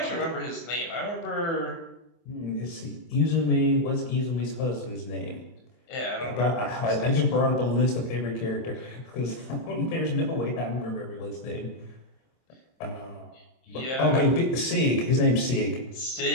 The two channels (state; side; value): late; right; 24 ms